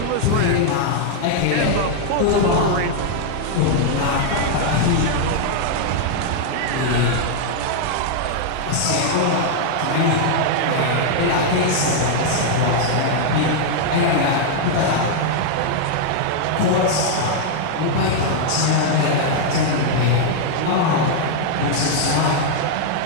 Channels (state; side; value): different; both; correlation -0.01